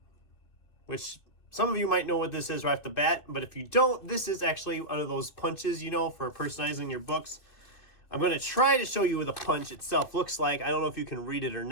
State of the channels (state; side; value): late; right; 2.6 ms